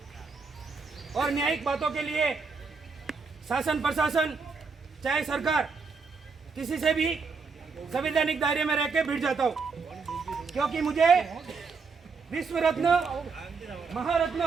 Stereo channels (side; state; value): left; quieter; 4.8 dB